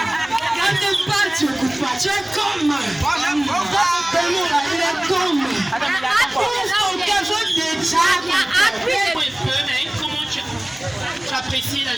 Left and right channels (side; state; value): right; noise; hum, 30 dB below the sound